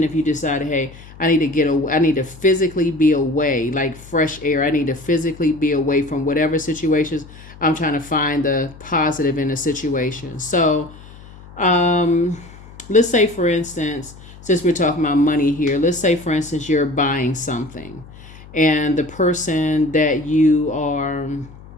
if you decided, hey, I need to get away, I need to physically be away, like fresh air. I need to physically be away from whatever situations. I'm trying to find the positive in the situation. So let's say, for instance, since we're talking about money here, let's say, for instance, you're buying something and the person that you are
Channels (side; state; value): left; noise; hum, 19 dB below the sound